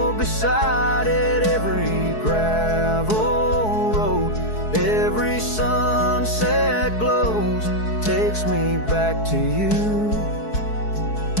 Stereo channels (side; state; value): right; late; 4.7 ms